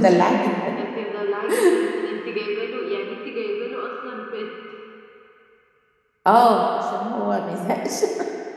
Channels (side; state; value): both; identical; correlation 1.00